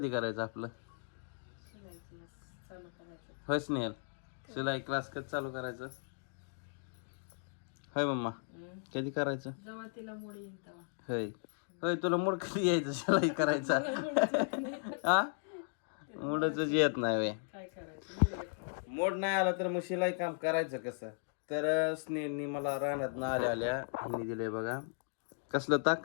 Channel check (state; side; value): silent; right; digital silence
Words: करायचं आपलं शिलाई क्लास चालू करायचं होय स्नेहल शिलाई क्लास कधी चालू करायचं होय मम्मा कधी करायचं जेव्हा तिला मुडी येईल तेव्हा होय होय तुला मूड कधी यायचं शिलाई करायचा हा मूडच येत नाही वे काय करायचं मोड नाही आला तर मग शिलाई काम करायचं कसं तर स्नेहलनी मला रानात ना आल्या आल्या ह्यांनी दिले बघा कसलं